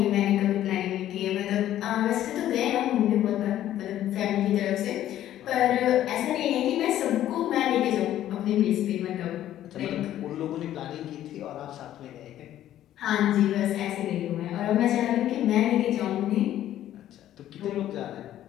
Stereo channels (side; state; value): right; quieter; 12.4 dB